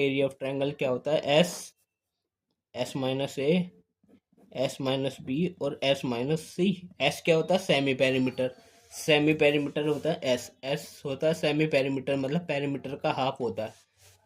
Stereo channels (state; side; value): identical; both; correlation 1.00